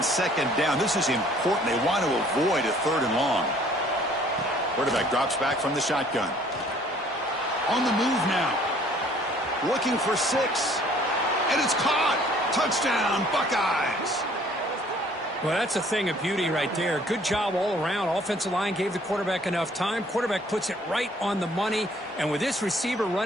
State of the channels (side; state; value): both; normal; correlation 0.57